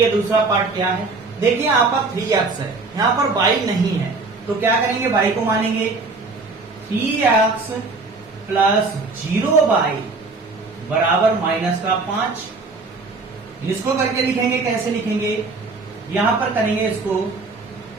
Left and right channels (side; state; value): left; quieter; 3.8 dB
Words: दूसरा पार्ट क्या है, देखिए यहाँ पर 3x है, यहाँ पर y नहीं है, तो क्या करेंगे, y को मानेंगे। 3x प्लस 0y बराबर माइनस का 5। इसको करके लिखेंगे, कैसे लिखेंगे, यहां पर करेंगे इसको